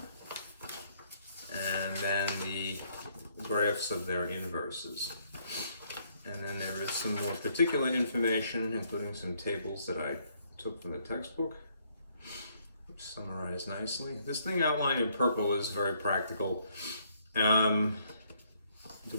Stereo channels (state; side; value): inverted; both; correlation -0.69